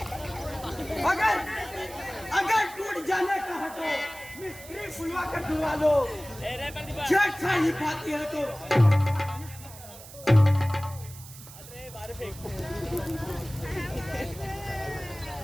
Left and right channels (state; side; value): noise; right; hiss, 17 dB below the sound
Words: अगर टूट जाने का है तो मिस्त्री बुलवा कर डुबा लो, छेड़छाड़ी पाती है तो